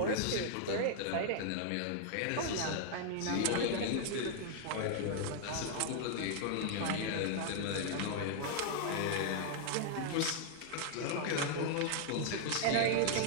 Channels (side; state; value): both; different; correlation 0.00